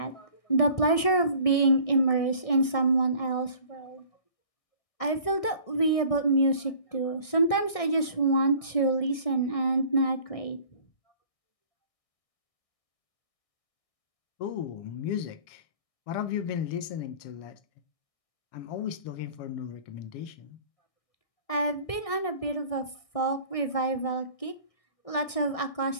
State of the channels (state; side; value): late; right; 1.6 ms